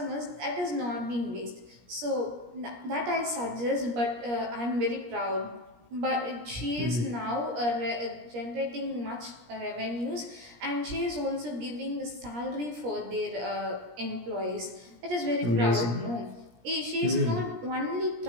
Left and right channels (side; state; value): left; late; 17 ms